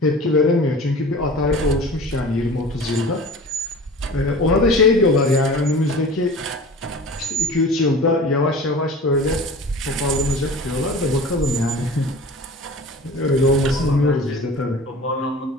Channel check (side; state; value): both; normal; correlation 0.39